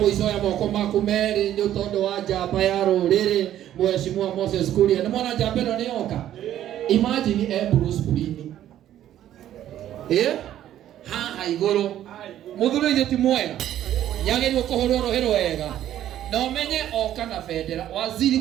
ya moko maku meri ni utondo wa njamba ya ruriri Mheshimiwa Moses Kuria. Ni mwana njamba no ni oka. Imagine Bruce Kulini. Haha iguru muthuri ithe ti mwega yagirwo kuhurwo rohero wega na umenye oka na federa waziri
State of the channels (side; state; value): left; quieter; 11.9 dB